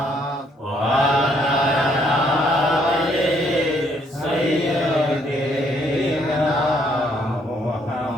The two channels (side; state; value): both; normal; correlation 0.68